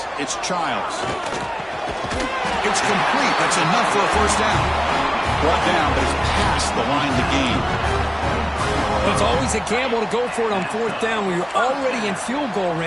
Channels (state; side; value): identical; both; correlation 1.00